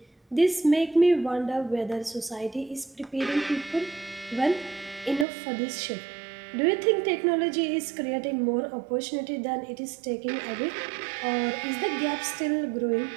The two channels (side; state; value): left; drops out; at 5.2 s